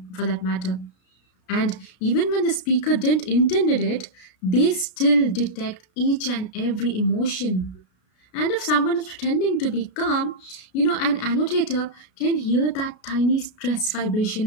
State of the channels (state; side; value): late; right; 33 ms